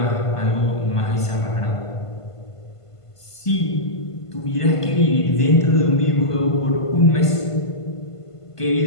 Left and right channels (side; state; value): right; late; 1.5 ms